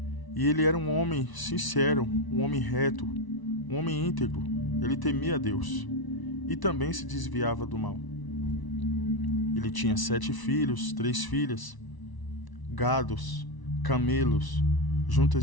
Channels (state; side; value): late; right; 1.0 ms